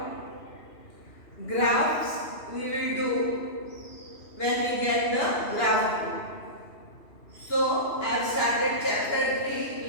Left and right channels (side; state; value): right; late; 2.8 ms